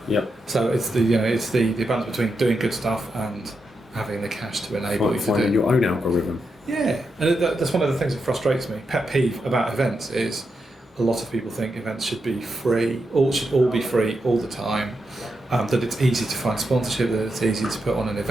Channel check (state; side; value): normal; both; correlation 0.85